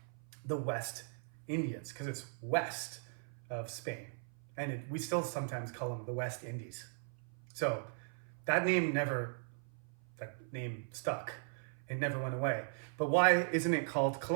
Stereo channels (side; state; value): left; silent; 52 dB below the other